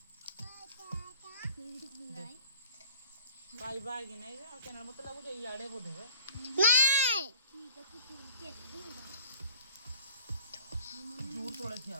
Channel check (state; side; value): inverted; both; correlation -0.48